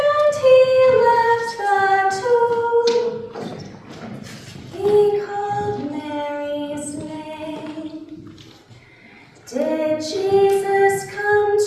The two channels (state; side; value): identical; both; correlation 1.00